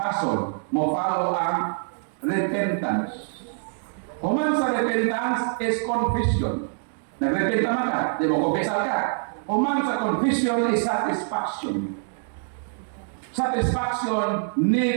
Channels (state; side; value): silent; left; digital silence